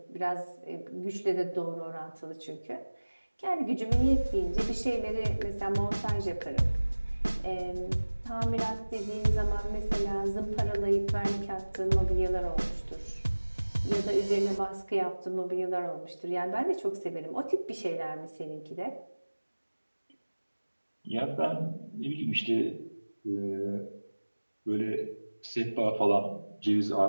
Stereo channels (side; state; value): both; inverted; correlation -1.00